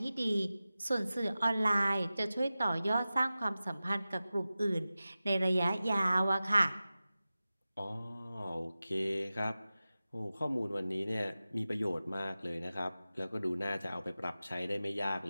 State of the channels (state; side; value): inverted; both; correlation -0.95